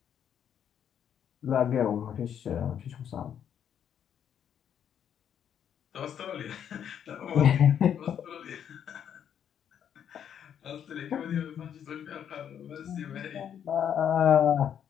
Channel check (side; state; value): right; quieter; 8.9 dB